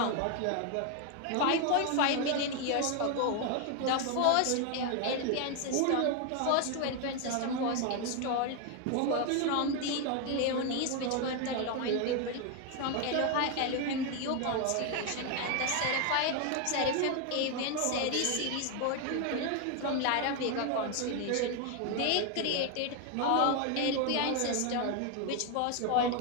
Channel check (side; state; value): both; different; correlation 0.01